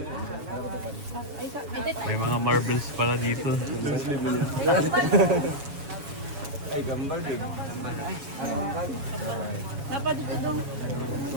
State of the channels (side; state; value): left; late; 7.2 ms